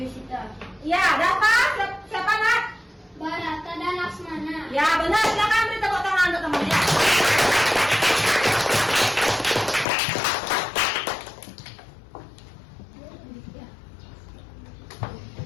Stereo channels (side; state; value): right; drops out; at 9.9 s